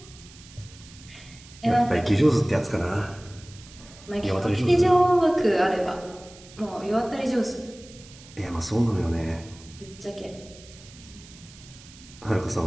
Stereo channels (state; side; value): noise; right; hiss, 21 dB below the sound